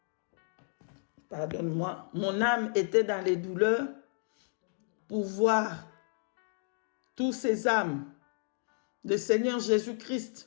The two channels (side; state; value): right; silent; digital silence